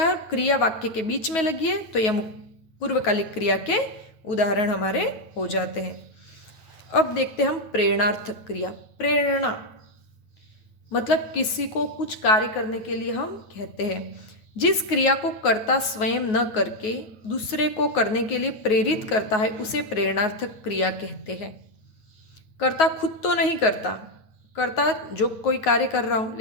क्रिया वाक्य के बीच में लगी है, तो यह पूर्वकालिक क्रिया के उदाहरण हमारे हो जाते हैं। अब देखते हैं हम प्रेरणार्थक क्रिया। प्रेरणा मतलब किसी को कुछ कार्य करने के लिए हम कहते हैं। जिस क्रिया को कर्ता स्वयं न करके दूसरे को करने के लिए प्रेरित करता है उसे प्रेरणार्थक क्रिया कहते हैं। कर्ता खुद तो नहीं करता, कर्ता जो कोई कार्य कर रहा हो,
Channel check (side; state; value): right; late; 9.4 ms